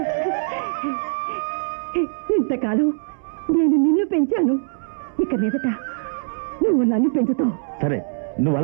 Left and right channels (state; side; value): silent; left; digital silence